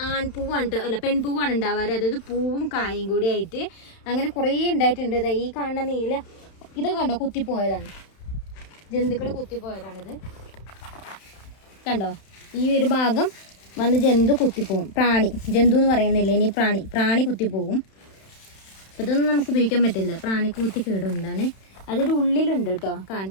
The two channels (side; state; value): right; late; 31 ms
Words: ആൺപൂവാണ് കേട്ടോ, അല്ല പെൺപൂവാണ് ഉണ്ടാവാറ്. അതായത് പൂവും കായും കൂടി ആയിട്ട് അങ്ങനെ കുറേ ഉണ്ടായിട്ടുണ്ട്. ഈ കാണുന്ന നീല ഇതൊക്കെ കണ്ടോ, കുത്തിപ്പോയതാണ്, ജന്തുക്കൾ കുത്തിപ്പോയതാണിത്. കണ്ടോ, ഈ ഒരു ഭാഗം വന്ന് ജന്തു കുത്തിപ്പോവും. ജന്തു എന്ന് പറയുന്നില്ല, ഇനി പ്രാണി കുത്തിപ്പോവും. ഇതൊന്നും നമുക്ക് ഉപയോഗിക്കാൻ പറ്റില്ല, പ്രാണിക്ക് കുത്തി കേടുണ്ടാണ്. അതിൻ്റെ ഉള്ളിലുണ്ട് കേട്ടോ,